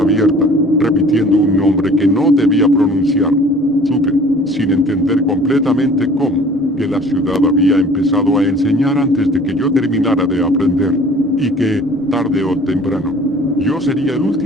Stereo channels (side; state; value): both; normal; correlation 0.50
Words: abierta, repitiendo un nombre que no debía pronunciar. Supe, sin entender completamente cómo, que la ciudad había empezado a enseñar antes de que yo terminara de aprender. Y que, tarde o temprano, yo sería el